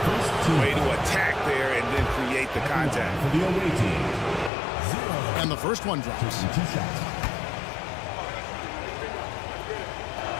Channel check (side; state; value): right; drops out; at 4.5 s